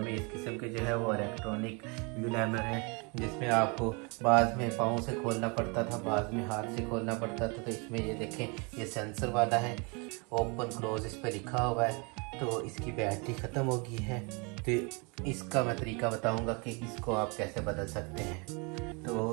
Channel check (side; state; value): left; quieter; 31.8 dB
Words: में इस किस्म के जो है वो इलेक्ट्रॉनिक म्यू लाइमर है, जिसमें आपको बाद में पाँव से खोलना पड़ता था, बाद में हाथ से खोलना पड़ता था। तो इसमें ये देखें, ये सेंसर वाला है, ओपन क्लोज इस पर लिखा हुआ है। तो इसकी बैटरी ख़त्म हो गई है। तो इसका मैं तरीका बताऊंगा कि इसको आप कैसे बदल सकते हैं।